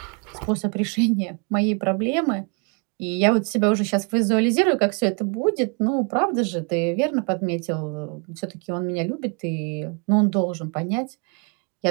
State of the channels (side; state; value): left; quieter; 35.0 dB